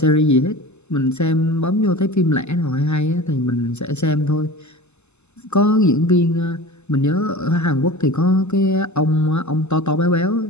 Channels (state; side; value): late; right; 0.82 ms